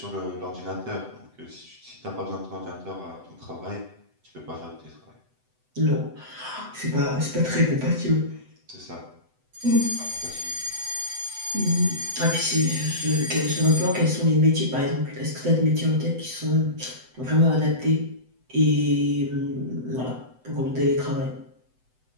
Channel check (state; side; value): late; left; 7.9 ms